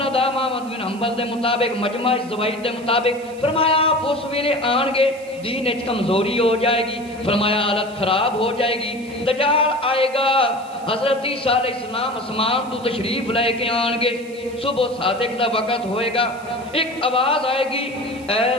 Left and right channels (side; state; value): right; noise; hiss, 23 dB below the sound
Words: احمد بن حنبل دے مطابق مجمع الزوائد دے مطابق فرمایا آپ اس ویلے آن گے دین اچ کمزوری ہو جائے گی، فرمایا حالت خراب ہو جائے گی، دجال آئے گا، حضرت عیسیٰ علیہ السلام اسمان تو تشریف لے کے آن گے، صبح صادق دا وقت ہوئے گا، ایک آواز آئے گی اے